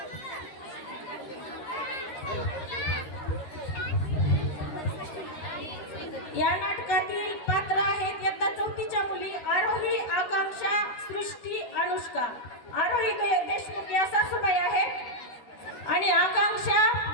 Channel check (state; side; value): late; right; 13 ms